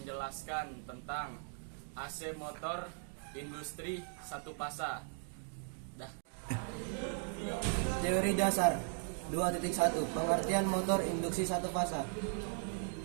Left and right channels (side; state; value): left; silent; 53 dB below the other